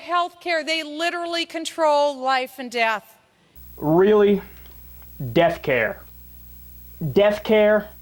care, they literally control life and death. Really? Deathcare. Deathcare.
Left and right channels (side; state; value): both; identical; correlation 1.00